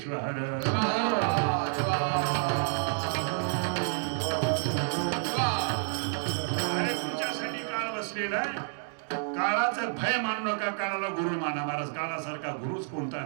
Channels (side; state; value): left; silent; 58 dB below the other